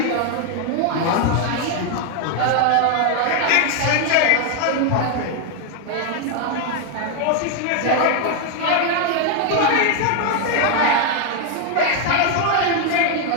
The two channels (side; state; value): both; different; correlation 0.01